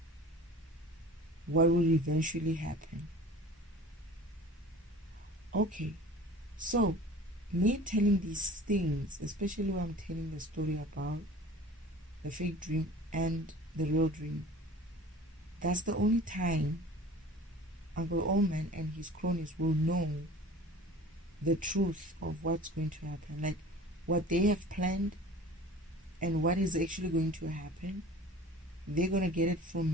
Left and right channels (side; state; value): both; normal; correlation 0.42